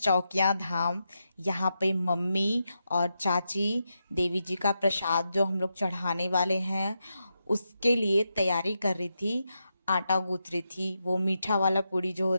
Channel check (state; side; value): inverted; both; correlation -0.86